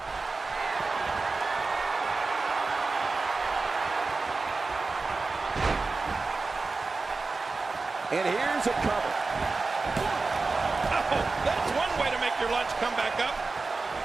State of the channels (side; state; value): left; quieter; 3.9 dB